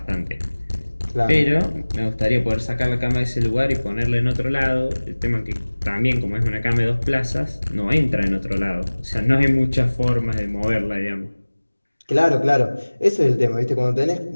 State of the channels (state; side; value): inverted; both; correlation -1.00